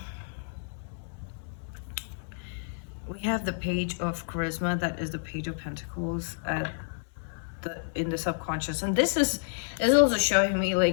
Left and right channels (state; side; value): silent; right; 58 dB below the other